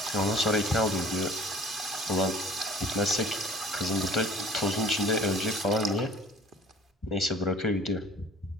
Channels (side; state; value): both; normal; correlation 0.49